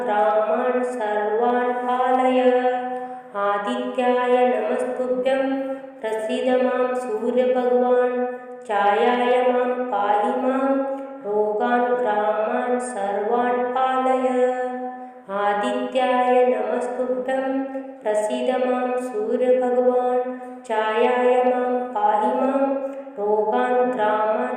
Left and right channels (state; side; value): identical; both; correlation 1.00